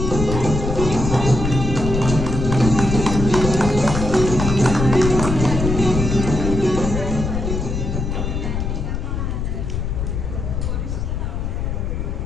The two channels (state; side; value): noise; left; rumble, 2 dB below the sound